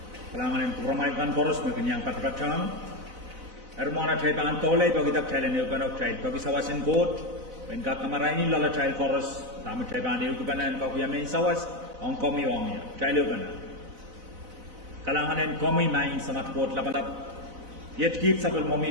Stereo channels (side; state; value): left; late; 4.0 ms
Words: kalangan yang kebramakan poros mungkin yang kata-kata ermona trai ban tolai bagi tak trai ne eukanok trai bagi sawasin court when ka kamaraini lala trai poros tamu trai ban eukanan ka kuya main sawas on komi ong ya trai eukanan kalangan yang komi main samat court lapalap yet kit sabel